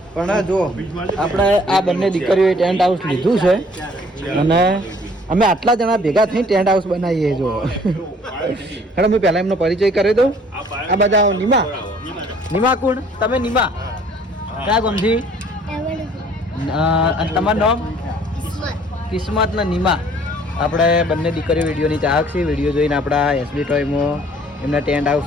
પણ જો આપણે આ બંને દીકરીઓએ ટેન્ટ હાઉસ લીધું છે અને અમે આટલા જણા ભેગા થઈને ટેન્ટ હાઉસ બનાવીએ જો હેડો મેં પહેલાં એમનો પરિચય કરી દઉં આ બધા નિમા કોણ તમે નિમા ક્યાં ગામથી અને તમારું નામ કિસ્મત ને નિમા આપણે બંને દીકરીઓ વિડીયોની ચાહક છે વિડીયો જોઈને આપણા એસબી ટોયમાં એમને ટેન્ટ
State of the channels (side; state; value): both; normal; correlation 0.57